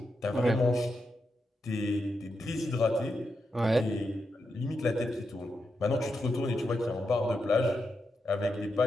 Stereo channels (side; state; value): both; normal; correlation 0.86